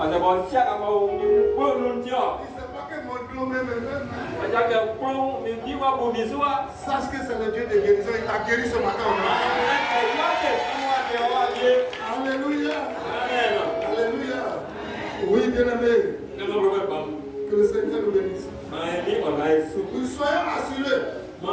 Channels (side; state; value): both; identical; correlation 1.00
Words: sait pas que mon Dieu même. Sache que c'est le Dieu de guérison. Il t'a guéri ce matin. Alléluia. Alléluia. Oui, bien-aimé. Que le Seigneur nous bénisse. Nous soyons assurés que